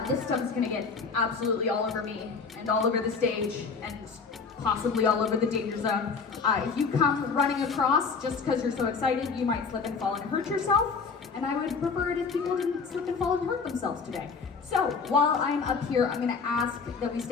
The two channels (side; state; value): right; quieter; 5.1 dB